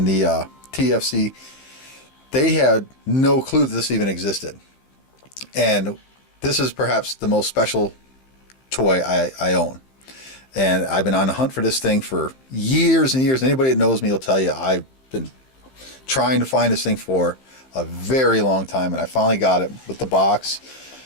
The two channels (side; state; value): right; late; 15 ms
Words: the TFC, they had no clue that this even existed. And this is perhaps the most special toy I own. And I've been on the hunt for this thing for years and years. Anybody that knows me will tell you I've been trying to find this thing for a very long time, and I finally got it with the box